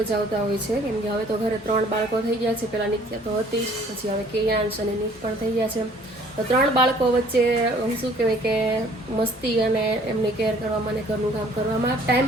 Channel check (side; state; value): both; normal; correlation 0.56